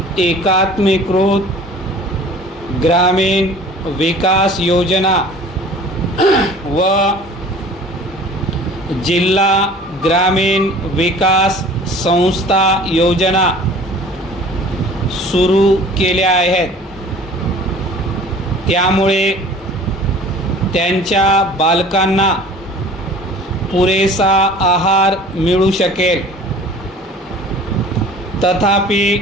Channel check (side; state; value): both; normal; correlation 0.46